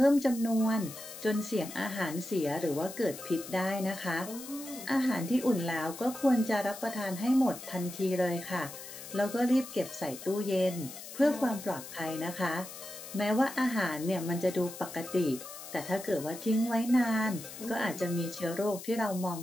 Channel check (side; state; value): left; noise; hiss, 13 dB below the sound